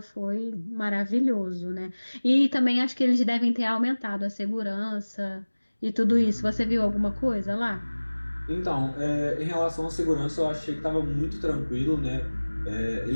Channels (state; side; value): inverted; both; correlation -1.00